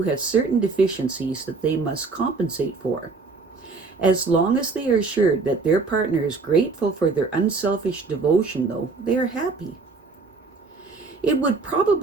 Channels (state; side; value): quieter; left; 4.2 dB